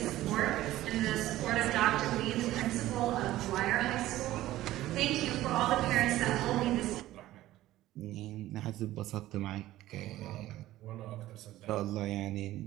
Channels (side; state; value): left; quieter; 15.2 dB